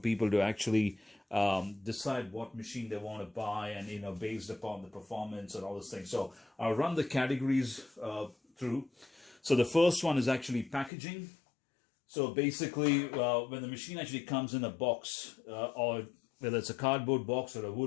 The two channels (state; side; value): drops out; right; at 10.9 s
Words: to actually decide what machine they want to buy, and based upon the performance and all those things. So I'll run the categories through. So the first one is actually packaging. So basically when the machine actually comes in a box, or whether it's a cardboard box or a